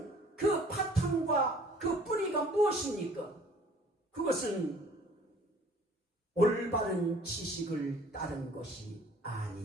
그 바탕과 그 뿌리가 무엇입니까? 그것은 올바른 지식을 따른 것이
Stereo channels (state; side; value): normal; both; correlation 0.54